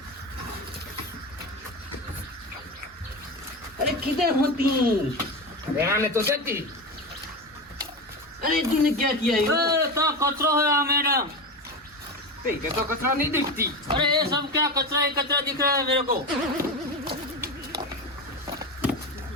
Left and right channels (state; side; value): normal; both; correlation 0.21